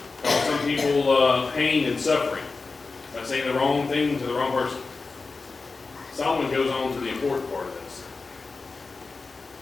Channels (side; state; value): right; quieter; 4.1 dB